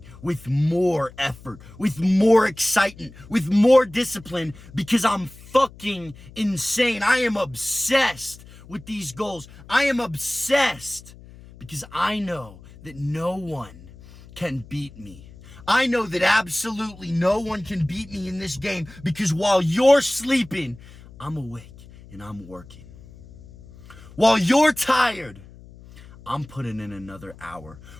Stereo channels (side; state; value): left; noise; hum, 20 dB below the sound